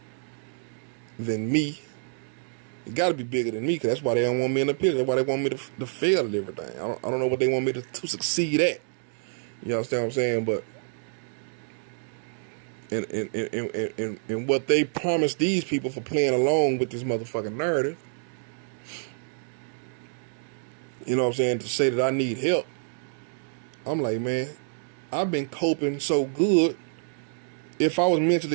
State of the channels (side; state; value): left; silent; digital silence